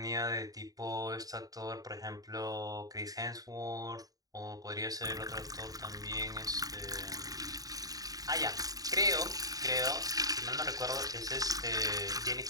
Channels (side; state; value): left; late; 0.18 ms